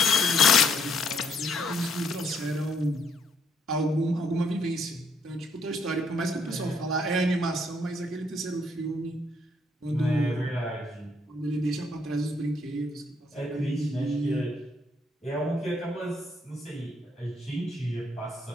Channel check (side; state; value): both; normal; correlation 0.70